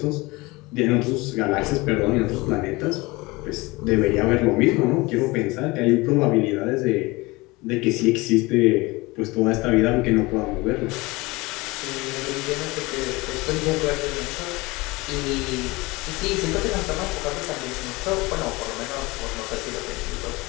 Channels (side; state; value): right; quieter; 22.9 dB